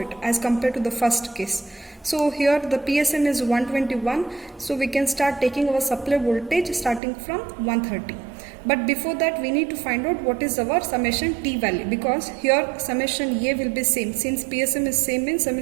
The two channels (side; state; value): left; drops out; at 7.0 s